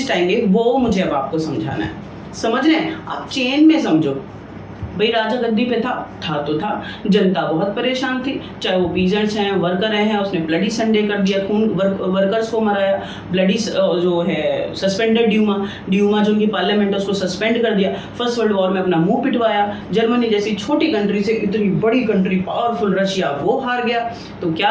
आएंगे। वो मुझे अब आपको समझाना है, समझ रहे हैं आप? चेन में समझो भाई, राजा गद्दी पे था तो था, जनता बहुत परेशान थी, चाहे वो पीजेंट्स हैं, वर्कर हैं, उसने ब्लडी संडे कर दिया, खून वर्कर्स को मराया, ब्लडी जो है सस्पेंडेड ड्यूमा जो उनकी पार्लियामेंट है उसको सस्पेंड कर दिया, फर्स्ट वर्ल्ड वॉर में अपना मुंह पिटवाया, जर्मनी जैसी छोटी कंट्री से इतनी बड़ी कंट्री पावरफुल रशिया वो हार गया। तो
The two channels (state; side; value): identical; both; correlation 1.00